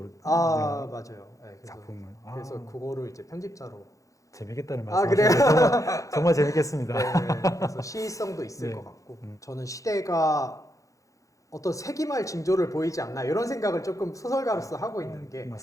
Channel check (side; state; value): right; late; 0.16 ms